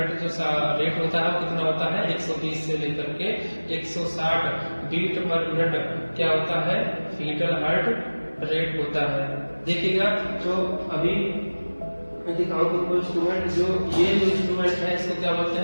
जो रेट होता है वो कितना होता है, 120 से लेकर के 160 बीट पर मिनट क्या होता है, फीटर हर्ट रेट होता है। देखिएगा जो अभी मैं दिखाऊं तुमको इंस्ट्रूमेंट, जो ये जो इंस्ट्रूमेंट है इसको क्या बोलते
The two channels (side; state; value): both; inverted; correlation -1.00